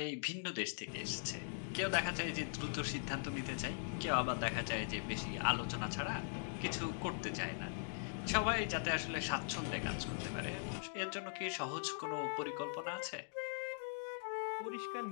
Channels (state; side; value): silent; right; digital silence